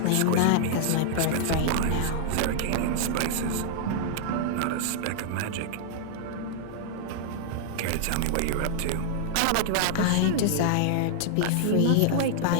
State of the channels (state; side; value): different; both; correlation -0.01